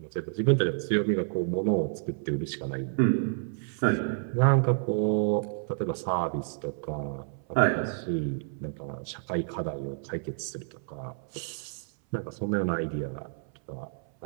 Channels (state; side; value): silent; left; 58 dB below the other